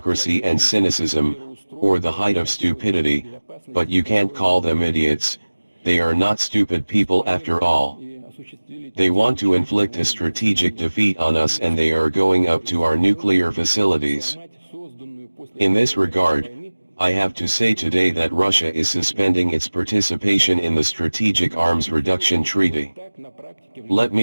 and cynicism, or the height of stupidity, but you can't call them idiots. They are not stupid people after all. They want to inflict a strategic defeat on us, and they are going up to our nuclear facilities. In this regard, I have to say today that Russia is suspending its participation in the Strategic Arms Reduction Treaty. Let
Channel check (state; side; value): inverted; both; correlation -1.00